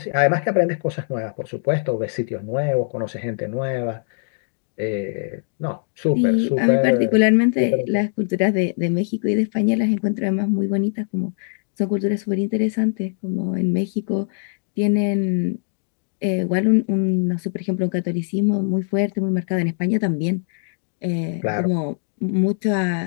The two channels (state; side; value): silent; right; digital silence